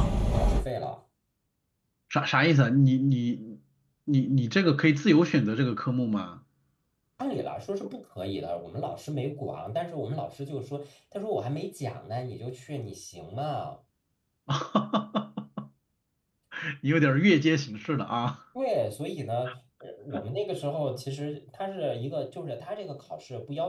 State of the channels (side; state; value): both; identical; correlation 1.00